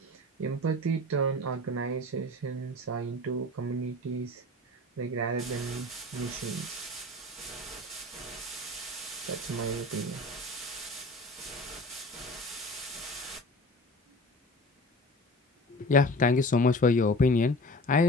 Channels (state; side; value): normal; both; correlation 0.39